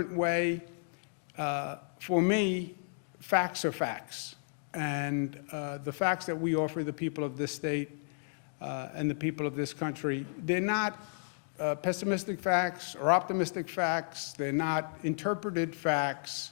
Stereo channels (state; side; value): silent; right; digital silence